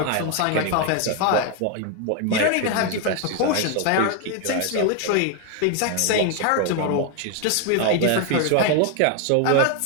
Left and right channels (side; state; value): both; different; correlation 0.01